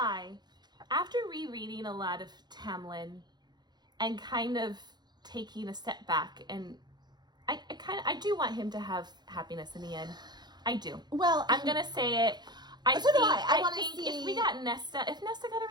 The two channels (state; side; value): late; left; 0.21 ms